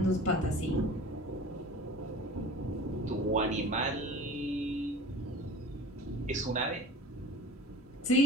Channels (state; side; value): normal; both; correlation 0.40